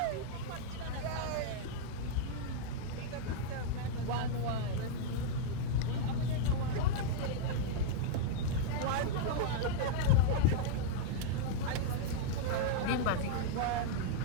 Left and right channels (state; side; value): different; both; correlation -0.01